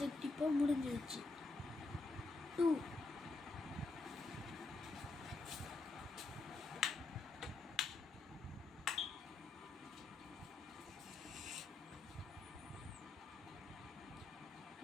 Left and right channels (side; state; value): right; quieter; 3.6 dB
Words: இப்போ முடிஞ்சிடுச்சு. 2